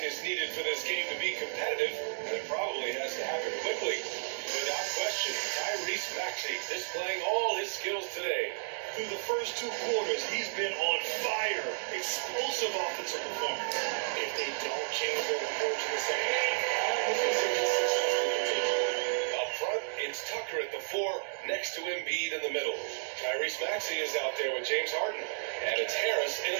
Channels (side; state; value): left; silent; digital silence